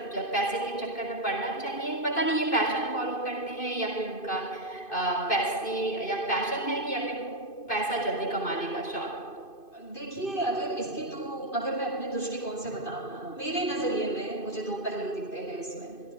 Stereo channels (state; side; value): late; right; 2.5 ms